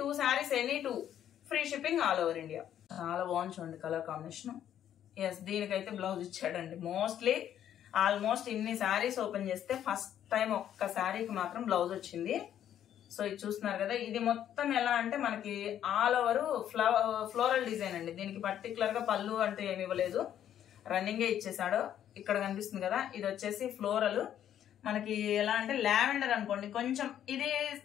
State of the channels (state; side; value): quieter; right; 10.5 dB